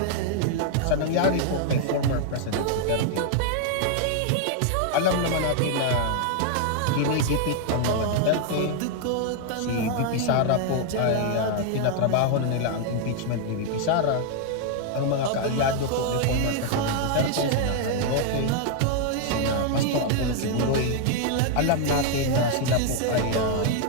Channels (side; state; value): both; different; correlation 0.00